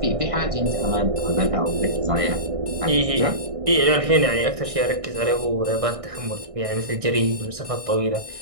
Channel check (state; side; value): late; left; 1.6 ms